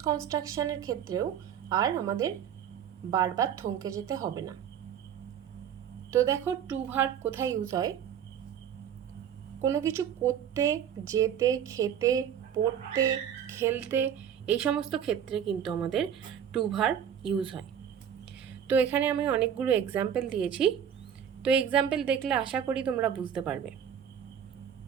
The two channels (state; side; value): quieter; left; 8.8 dB